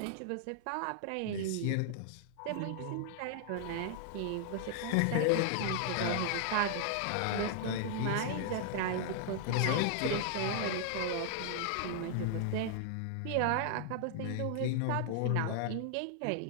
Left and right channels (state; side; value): different; both; correlation 0.00